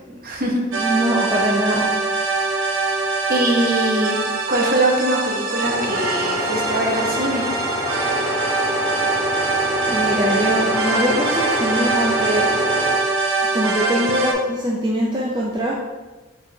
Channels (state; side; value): normal; both; correlation 0.30